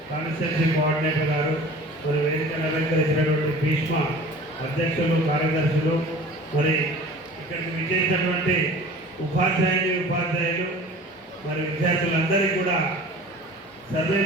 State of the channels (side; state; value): both; normal; correlation 0.43